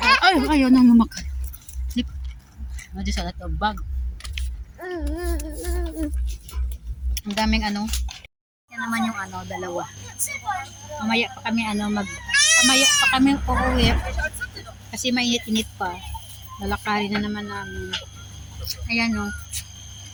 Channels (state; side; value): identical; both; correlation 1.00